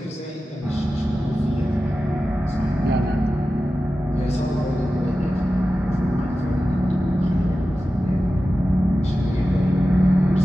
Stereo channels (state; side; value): normal; both; correlation 0.94